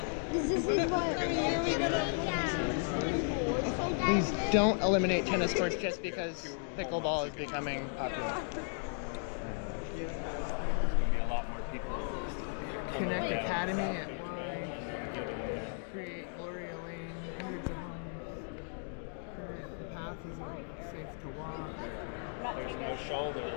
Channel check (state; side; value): silent; right; 54 dB below the other